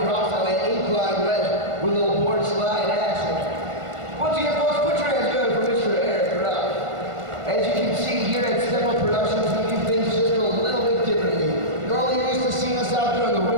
on that incline wedge with a little board slide action. Once again, folks, put your hands together for Mr. Eric Ruff. As you can see here at Step Up Productions, we do things just a little bit differently. Normally you're used to seeing us out there on the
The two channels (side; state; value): left; late; 1.5 ms